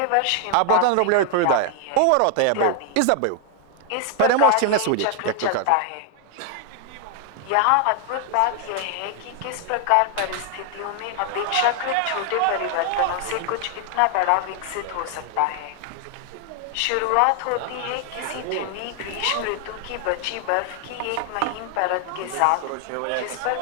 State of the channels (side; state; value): both; different; correlation 0.00